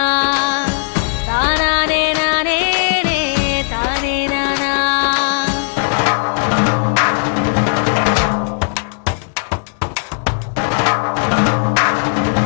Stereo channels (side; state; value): right; silent; digital silence